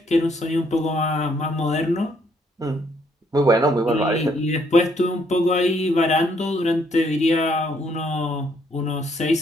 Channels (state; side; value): normal; both; correlation 0.69